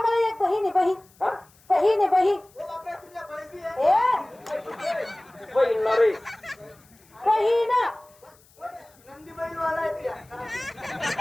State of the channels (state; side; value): noise; left; hiss, 29 dB below the sound